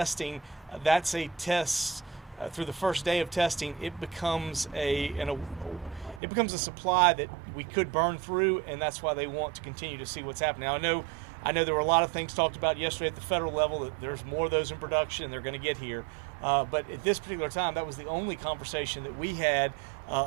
that's a test. Through the first day of testing, it becomes a supply that we could burn through, and that's why they want to continue to see what's happening. Now, I know there were a lot of things talked about yesterday at the federal level that there's more of those in production and they're going to get here. But at this particular time, that was the only conversation that we had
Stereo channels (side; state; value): left; drops out; at 6.2 s